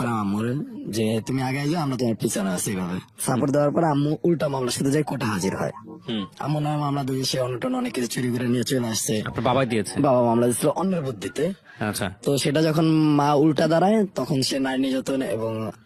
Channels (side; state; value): both; identical; correlation 1.00